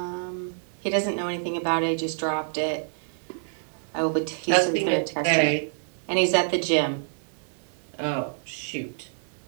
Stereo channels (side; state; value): left; silent; 60 dB below the other